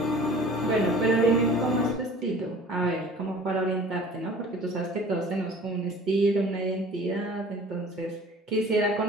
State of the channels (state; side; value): normal; both; correlation 0.46